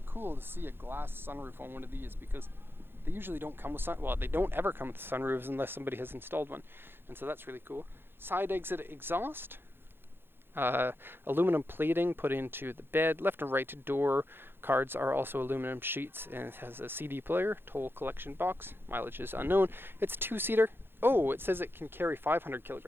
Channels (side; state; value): left; late; 0.10 ms